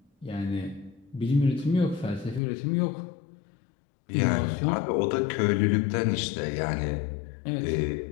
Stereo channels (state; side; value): drops out; right; at 2.4 s